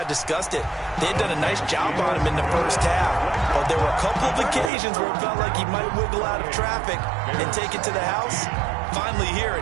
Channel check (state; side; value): drops out; left; at 4.7 s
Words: discussed it. They had done a nice job on him in the first half. But there were a couple of occasions where it felt like he might wiggle out of traffic and take it to the house. Finally here